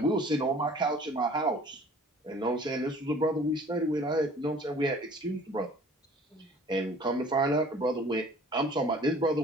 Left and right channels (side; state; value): both; normal; correlation 0.51